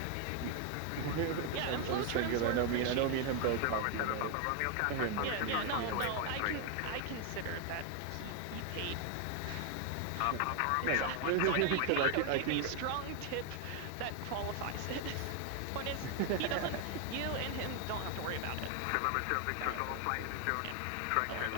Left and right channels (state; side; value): different; both; correlation 0.00